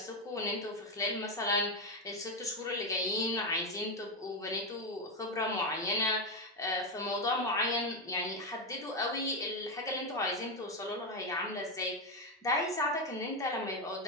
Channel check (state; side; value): normal; both; correlation 0.08